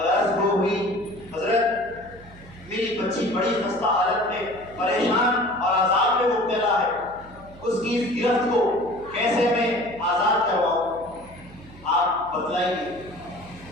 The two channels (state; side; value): noise; right; hum, 20 dB below the sound